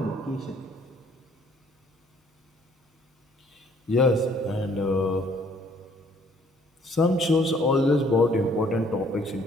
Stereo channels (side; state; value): both; normal; correlation 0.61